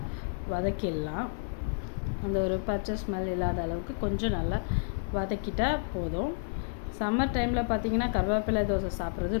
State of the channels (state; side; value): silent; right; 57 dB below the other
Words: வதக்கிடலாம். அந்த ஒரு பச்சை ஸ்மெல் இல்லாத அளவுக்கு கொஞ்சம் நல்லா வதக்கிட்டால் போதும். சம்மர் டைமில் பார்த்திங்கன்னா கருவேப்பிலை தோசை சாப்பிட்றது